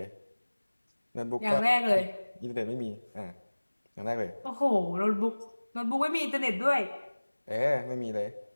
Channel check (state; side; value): inverted; both; correlation -1.00